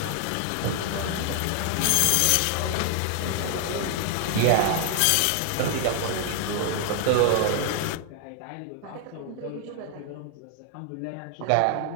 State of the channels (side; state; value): both; different; correlation 0.00